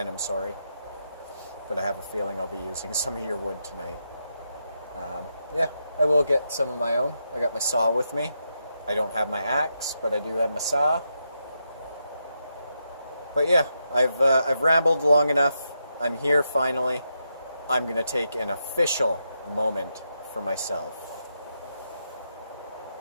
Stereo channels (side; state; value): both; inverted; correlation -0.84